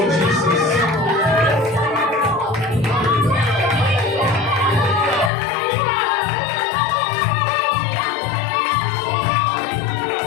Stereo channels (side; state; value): right; drops out; at 5.3 s